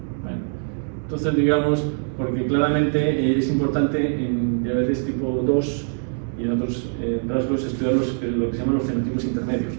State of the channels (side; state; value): left; silent; 63 dB below the other